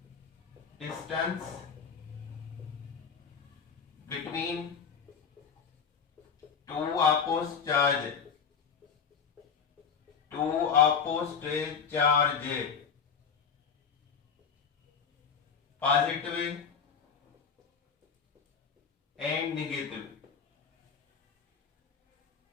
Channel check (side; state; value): right; quieter; 6.3 dB